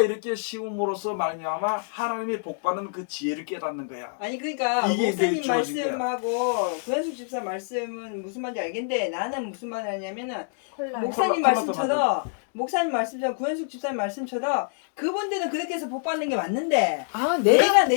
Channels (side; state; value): right; silent; digital silence